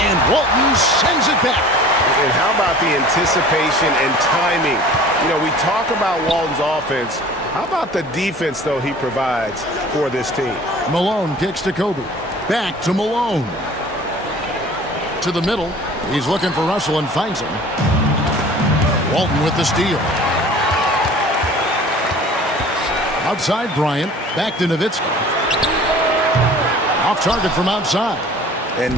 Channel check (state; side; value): normal; both; correlation 0.45